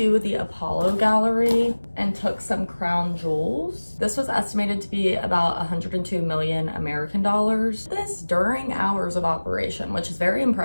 the Apollo Gallery and took some crown jewels. This was estimated to be about 102 million American dollars. This during hours of operation, which is very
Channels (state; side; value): inverted; both; correlation -1.00